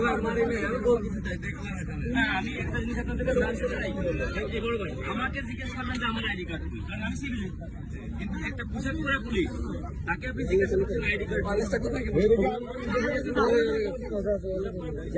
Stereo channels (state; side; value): identical; both; correlation 1.00